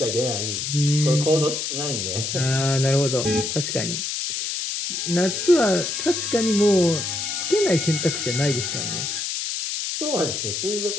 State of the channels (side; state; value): left; noise; hiss, 3 dB below the sound